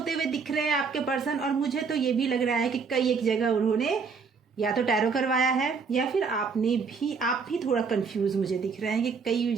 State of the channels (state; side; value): quieter; left; 5.3 dB